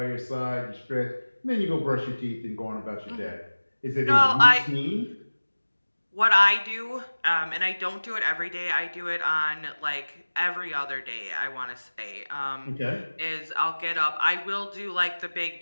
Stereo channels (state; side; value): inverted; both; correlation -1.00